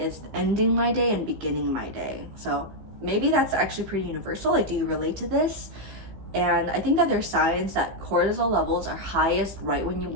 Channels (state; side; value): late; left; 15 ms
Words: ending my day and beginning my day. So maybe that's actually pretty universal. Like, do you relate to this? And I think that there's science that cortisol levels are highest right when you